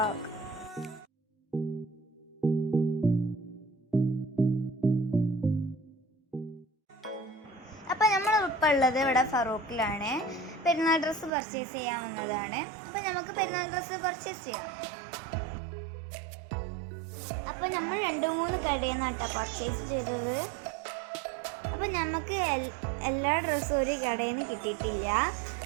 അപ്പോൾ നമ്മൾ ഇപ്പോൾ ഉള്ളത് ഇവിടെ ഫറൂഖിലാണ്. പെരുന്നാൾ ഡ്രസ്സ് പർച്ചേസ് ചെയ്യാൻ വന്നതാണ്. അപ്പോൾ നമുക്ക് പെരുന്നാൾ ഡ്രസ്സ് പർച്ചേസ് ചെയ്യാം. അപ്പോൾ നമ്മൾ 2-3 കടയിൽ നിന്നാണ് പർച്ചേസ് ചെയ്തത്. അപ്പോൾ നമുക്ക് എല്ലാ ഡ്രസ്സും ഒരു കടയിൽ നിന്ന് കിട്ടിയിട്ടില്ല.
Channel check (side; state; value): left; drops out; at 11.3 s